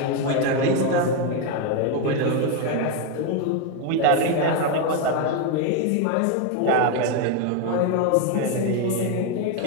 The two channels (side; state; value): both; different; correlation 0.01